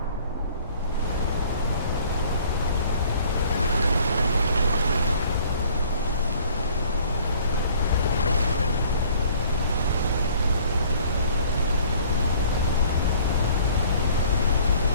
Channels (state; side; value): inverted; both; correlation -0.55